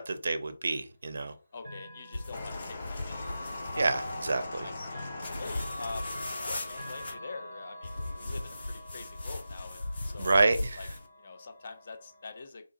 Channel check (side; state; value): both; inverted; correlation -0.92